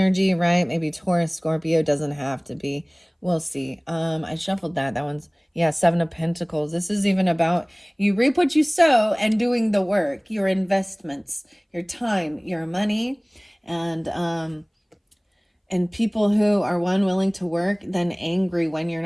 right? Maybe Taurus, Scorpio, doesn't have to be. We'll see. I shuffled that. That one's, Seven of Pentacles. This is even about you reap what you sow and doing the work, your investments, your time, your money, and people who are willing to work, then angry when you're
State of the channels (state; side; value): identical; both; correlation 1.00